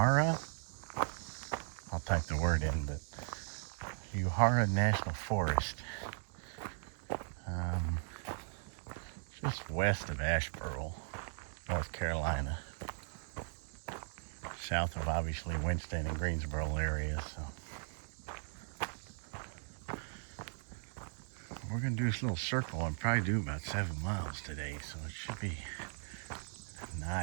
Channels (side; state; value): left; silent; 52 dB below the other